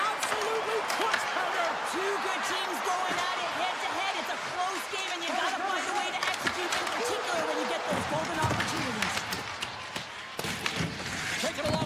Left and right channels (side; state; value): both; identical; correlation 1.00